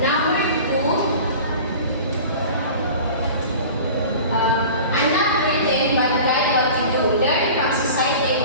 2. I'm not written, but write what you do. Learn from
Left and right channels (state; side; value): inverted; both; correlation -0.39